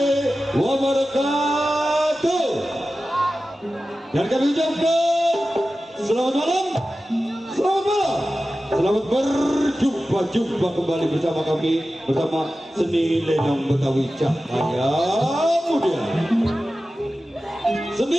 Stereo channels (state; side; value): normal; both; correlation 0.94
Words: wabarakatuh. Dan kami ucapkan selamat malam, selamat malam, selamat berjumpa kembali bersama kami, bersama seni lenong Betawi Cahaya Muda.